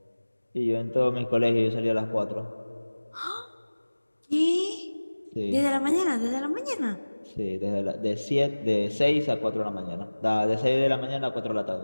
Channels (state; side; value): inverted; both; correlation -1.00